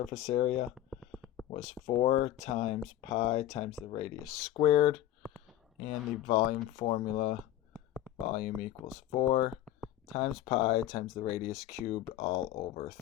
area was 4 times pi times the radius squared, and the volume formula, volume equals 4 times pi times the radius cubed all over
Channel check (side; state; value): right; quieter; 12.9 dB